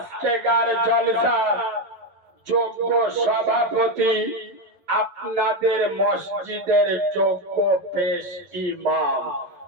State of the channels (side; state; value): left; late; 11 ms